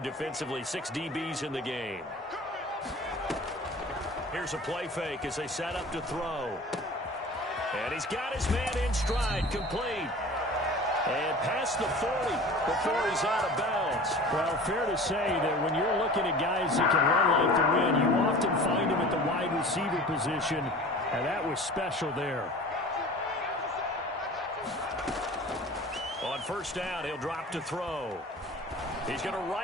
6 DBs in the game. Here's a play fake as they set up to throw. And he's got his man in stride, complete. And past the 40 before he's out of bounds. Well, fair to say that when you're looking at guys that can run like the wind, you often find them at the wide receiver position, and that was special there. On first down, he'll drop to throw. He's going to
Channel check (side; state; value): both; normal; correlation 0.40